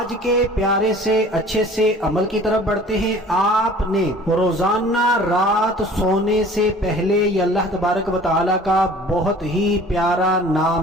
کے پیارے سے اچھے سے عمل کی طرف بڑھتے ہیں۔ آپ نے روزانہ رات سونے سے پہلے یہ اللہ تبارک و تعالیٰ کا بہت ہی پیارا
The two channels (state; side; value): normal; both; correlation 0.48